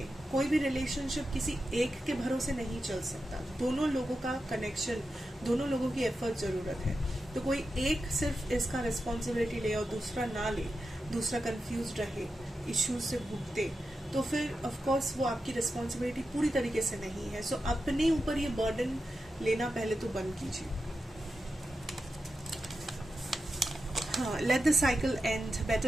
कोई भी रिलेशनशिप किसी एक के भरोसे नहीं चल सकता. दोनों लोगों का कनेक्शन, दोनों लोगों की एफर्ट जरूरत है. तो कोई एक सिर्फ इसका रिस्पॉन्सिबिलिटी ले और दूसरा ना ले, दूसरा कंफ्यूज रहे, इश्यूज से भुगते, तो फिर ऑफ कोर्स वो आपकी रिस्पॉन्सिबिलिटी पूरी तरीके से नहीं है. सो अपने ऊपर ये बर्डन लेना पहले तो बंद कीजिए. Let the cycle end.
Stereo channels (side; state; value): both; normal; correlation 0.90